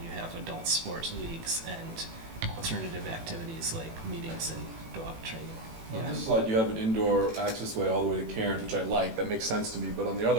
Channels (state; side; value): late; left; 18 ms